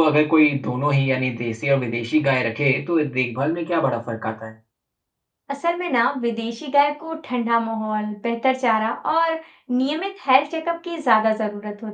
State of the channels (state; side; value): identical; both; correlation 1.00